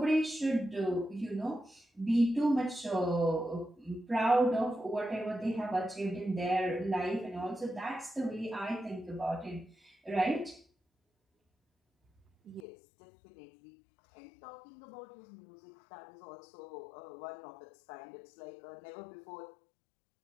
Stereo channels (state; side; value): drops out; right; at 12.7 s